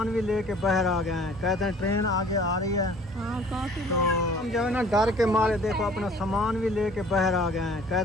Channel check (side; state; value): both; normal; correlation 0.51